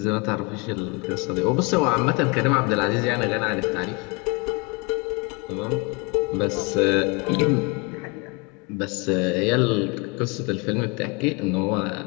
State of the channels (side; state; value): right; quieter; 30.0 dB